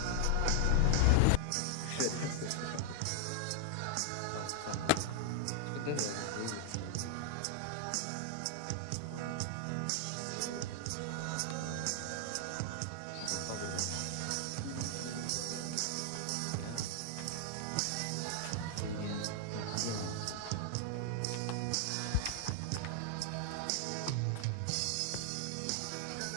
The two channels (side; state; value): both; different; correlation 0.00